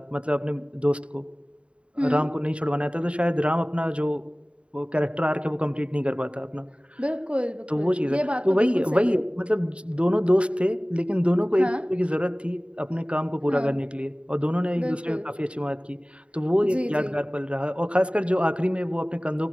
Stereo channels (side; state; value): left; late; 0.059 ms